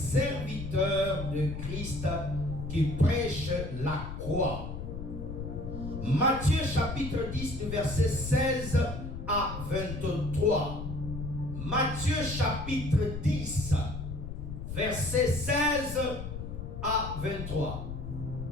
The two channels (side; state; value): left; noise; rumble, 7 dB below the sound